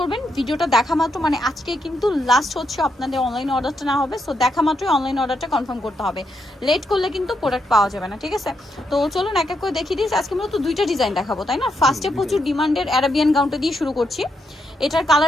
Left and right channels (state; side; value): normal; both; correlation 0.80